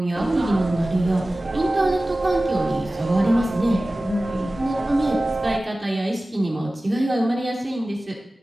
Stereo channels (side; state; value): both; normal; correlation 0.97